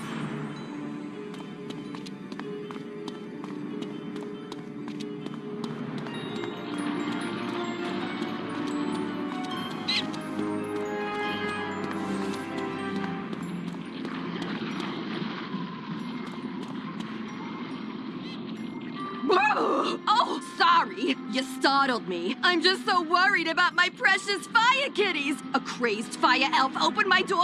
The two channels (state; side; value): identical; both; correlation 1.00